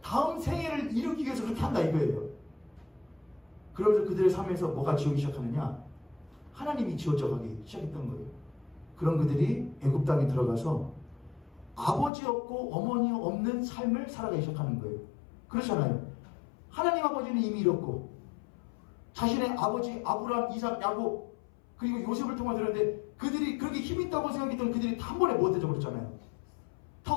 다음 생애를 이루기 위해서 그렇게 한다 이거예요. 그러면서 그들의 삶에서 뭐가 지우기 시작하느냐? 하나님이 지워져 가기 시작했던 거예요. 그런 그들이 애굽 땅에 들어가서 아버지 없고 어머니 없는 삶을 살아가기 시작하는 거예요. 그렇잖아요. 하나님 아버지는 이미 잃었고 자신의 아버지 아브라함, 이삭, 야곱 그리고 요셉을 통해 들었는데 그들이 그렇게 힘 있다고 생각했던 그들이 다 한 번에 못 해져버렸잖아요. 다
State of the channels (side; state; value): right; drops out; at 12.1 s